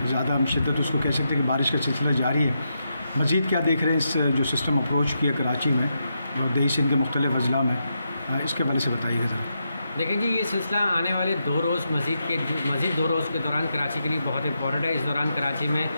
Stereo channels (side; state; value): both; inverted; correlation -0.84